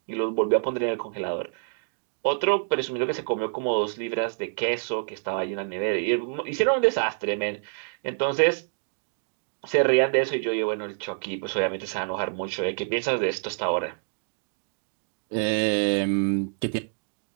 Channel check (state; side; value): silent; left; digital silence